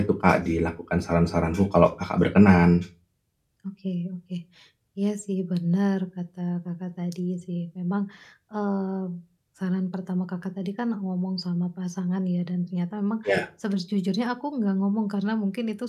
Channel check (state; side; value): identical; both; correlation 1.00